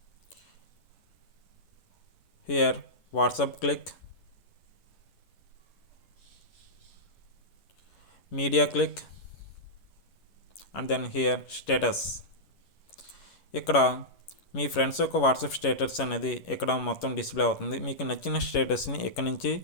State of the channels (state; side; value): late; right; 11 ms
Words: Here WhatsApp click, media click and then here status. ఇక్కడ మీ ఫ్రెండ్స్ యొక్క వాట్సాప్ స్టేటస్ అనేది ఇక్కడ మొత్తం డిస్ప్లే అవుతుంది. మీకు నచ్చిన స్టేటస్ని ఇక్కడ నుంచి